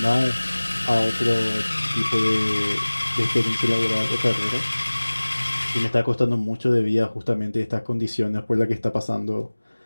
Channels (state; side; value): inverted; both; correlation -1.00